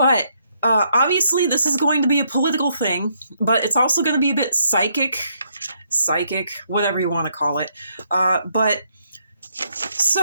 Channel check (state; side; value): inverted; both; correlation -0.73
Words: obviously, this is going to be a political thing, but it's also going to be a bit psychic, whatever you want to call it. But